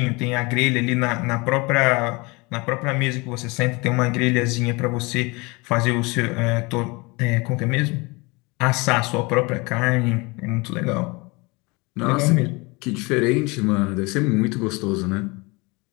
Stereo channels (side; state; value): right; quieter; 26.2 dB